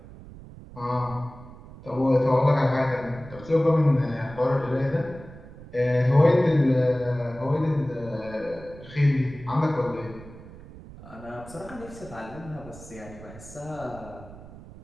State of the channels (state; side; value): noise; right; rumble, 17 dB below the sound